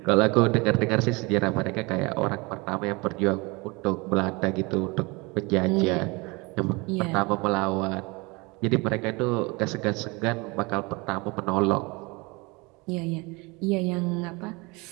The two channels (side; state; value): left; quieter; 26.3 dB